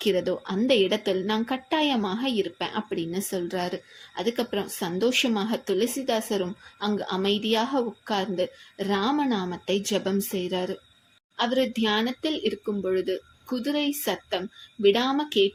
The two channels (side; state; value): both; identical; correlation 1.00